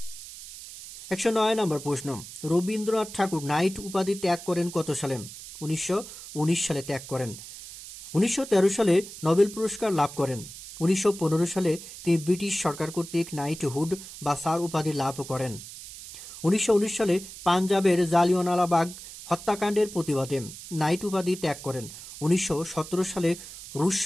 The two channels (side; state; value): right; noise; hiss, 14 dB below the sound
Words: 109 নম্বর প্রশ্ন, রবীন্দ্রনাথ ঠাকুর নাইট উপাধি ত্যাগ করেন কত সালে? 1919 সালে ত্যাগ করেন। 1913 সালে নোবেল পুরস্কার লাভ করেন। 1915 সালে তিনি ব্রিটিশ সরকার কর্তৃক নাইটহুড বা স্যার উপাধি লাভ করেন। 1919 সালে পাঞ্জাবের জালিয়ানওয়ালাবাগ হত্যাকাণ্ডের প্রতিবাদে নাইট উপাধি ত্যাগ করেন। 1917 সালে রুশ